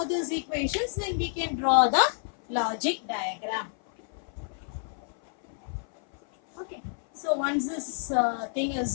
these equations, then we can draw the logic diagram. Okay. So once this thing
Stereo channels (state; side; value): silent; right; 56 dB below the other